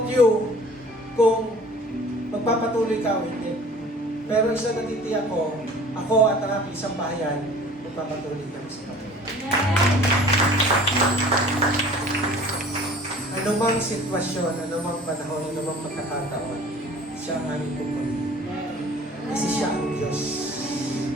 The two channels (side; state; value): both; normal; correlation 0.48